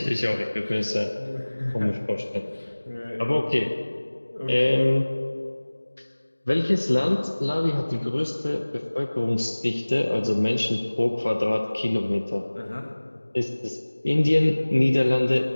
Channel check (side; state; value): both; inverted; correlation -1.00